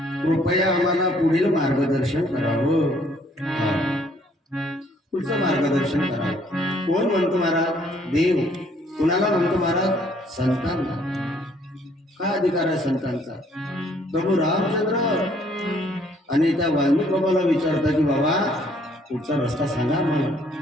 कृपया आम्हाला पुढील मार्गदर्शन करावं. पुढचं मार्गदर्शन करावं. कोण म्हणतो महाराज? देव. कुणाला म्हणतो महाराज? संतांना. काय अधिकार आहे संतांचा? प्रभू रामचंद्र आणि त्या वाल्मिक बाबाला विचारता की बाबा पुढचा रस्ता सांगा आम्हाला,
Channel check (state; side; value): normal; both; correlation 0.63